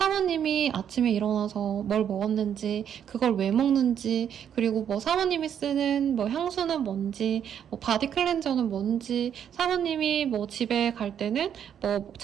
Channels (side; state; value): left; quieter; 8.9 dB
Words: 아침에 일어나서 뭘 먹었는지 그걸 왜 먹는지 그리고 뭐 사모님이 쓰는 뭐 향수는 뭔지 뭐 바디 클렌저는 뭔지 사모님이 뭐 집에 갈 때는 뭐